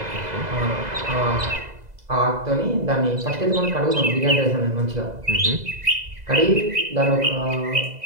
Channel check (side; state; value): left; late; 2.0 ms